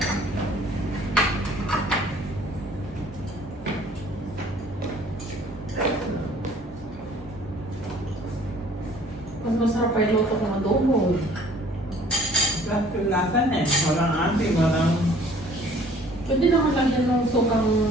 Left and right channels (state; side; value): normal; both; correlation 0.55